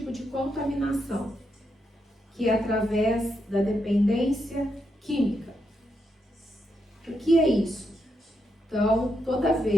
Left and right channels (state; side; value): normal; both; correlation 0.82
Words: de contaminação, que é através da dependência química. O que é isso? Então, toda